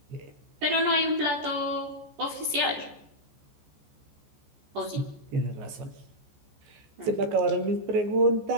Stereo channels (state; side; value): late; left; 14 ms